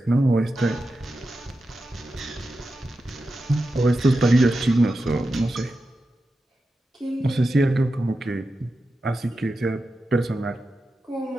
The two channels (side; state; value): both; normal; correlation 0.91